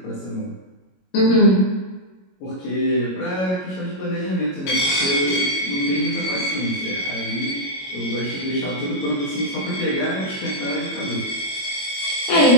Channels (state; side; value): late; right; 22 ms